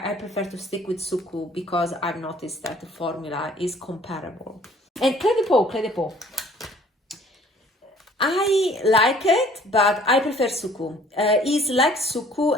prefer to stick with Suqqu because I've noticed that the formula is comparable. And Cle de Peau. I like it, but I prefer Suqqu. It's like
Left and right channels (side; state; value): both; normal; correlation 0.55